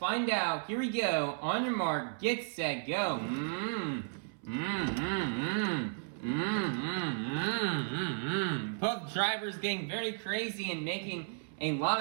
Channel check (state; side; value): silent; left; 55 dB below the other